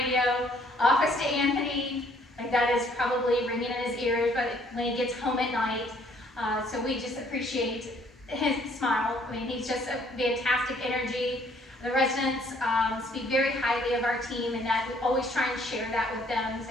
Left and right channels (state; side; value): normal; both; correlation 0.63